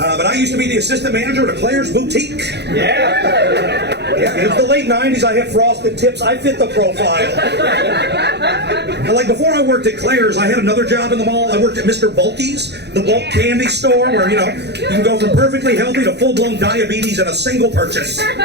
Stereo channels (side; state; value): left; late; 0.49 ms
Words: I used to be the assistant manager at a Claire's boutique. Yeah, it was the late 90s. I had frosted tips. I fit the profile. And like before I worked at Claire's, I had another job in the mall. I worked at Mr. Bulky's, the bulk candy store where, you know, you can go from perfectly healthy to full-blown diabetes in a single purchase.